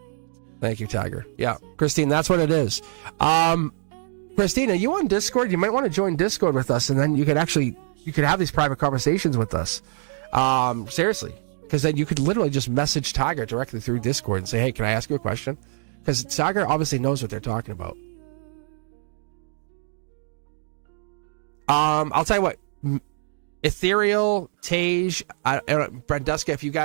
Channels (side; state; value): left; silent; digital silence